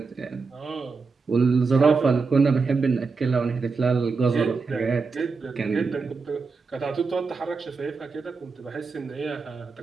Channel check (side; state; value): left; quieter; 4.6 dB